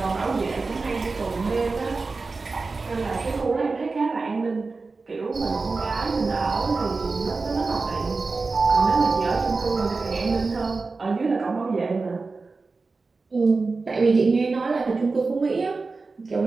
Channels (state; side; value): quieter; left; 4.0 dB